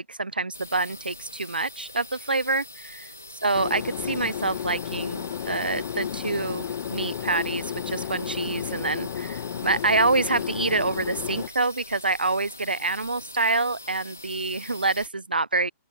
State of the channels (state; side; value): inverted; both; correlation -0.47